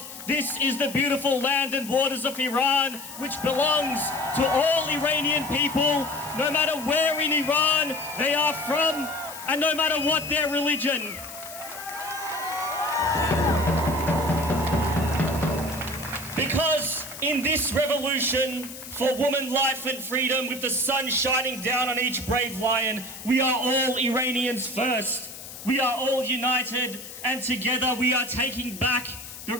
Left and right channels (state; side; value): noise; left; hiss, 13 dB below the sound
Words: This is the beautiful land and waters of Iran, which belongs to all Iranian people, no matter where in Iran they are from, and no matter what their religion. Because in this revolution for woman, life and freedom, with the sun shining down on each brave lion, we are all Iranians first. We are all united, and together we are taking back